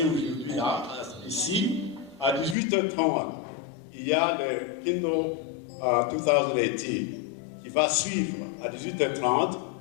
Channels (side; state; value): right; drops out; at 2.6 s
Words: aujourd'hui, là, ici, à 18h30, il y a le Kingdom 2018 qui va suivre à 18h30